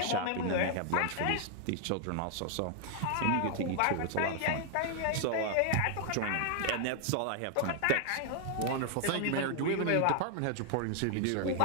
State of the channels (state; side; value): different; both; correlation 0.00